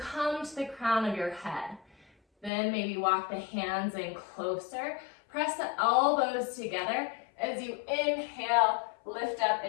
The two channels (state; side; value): drops out; right; at 2.5 s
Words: to the crown of your head. Then maybe walk the hands in closer. Press the elbows together as you inhale, lift up